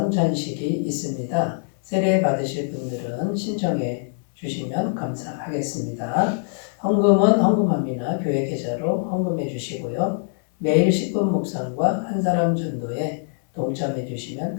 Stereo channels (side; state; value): right; silent; 63 dB below the other